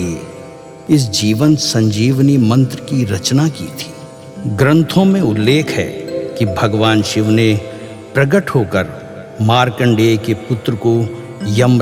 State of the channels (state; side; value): identical; both; correlation 1.00